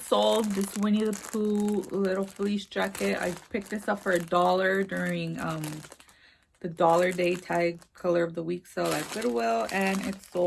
sold, this Winnie the Pooh little fleece jacket. I picked this up for $1 during the Dollar Day Tag Color of the Week sale at Goodwill, and it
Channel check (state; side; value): identical; both; correlation 1.00